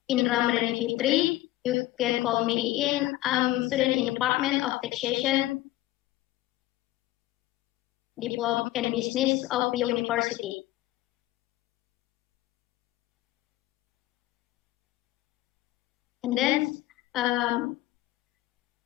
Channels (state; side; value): quieter; right; 16.6 dB